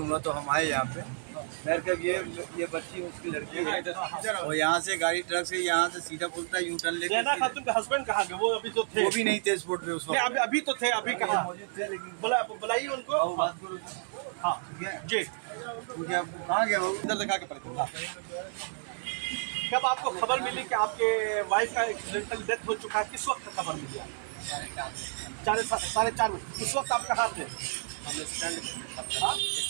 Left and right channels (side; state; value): left; silent; digital silence